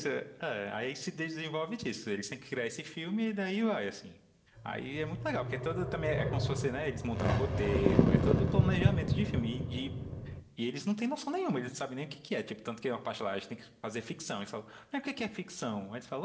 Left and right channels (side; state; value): both; identical; correlation 1.00